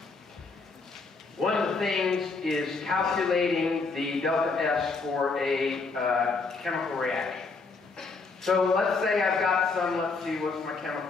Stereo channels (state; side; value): quieter; right; 4.2 dB